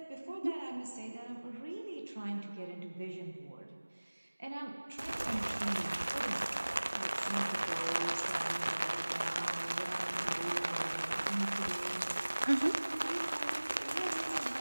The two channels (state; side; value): inverted; both; correlation -1.00